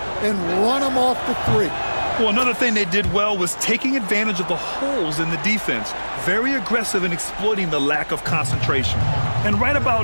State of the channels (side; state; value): both; inverted; correlation -1.00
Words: and run them off the 3. Well, another thing they did well was taking advantage of the holes in the defense. Very aggressive in exploiting the lack of concentration. And right